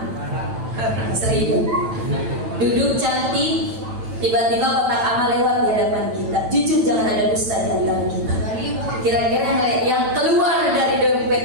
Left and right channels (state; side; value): late; left; 9.0 ms